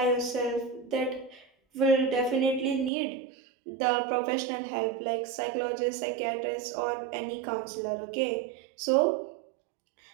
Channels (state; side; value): drops out; left; at 2.9 s